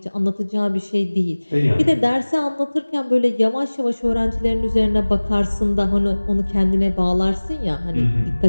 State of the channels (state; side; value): inverted; both; correlation -1.00